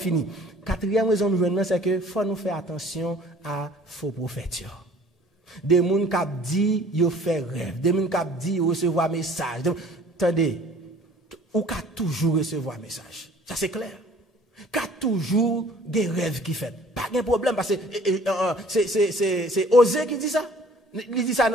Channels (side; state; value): both; normal; correlation 0.52